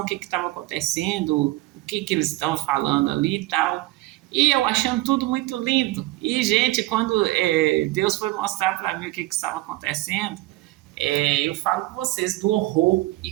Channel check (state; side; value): quieter; left; 18.4 dB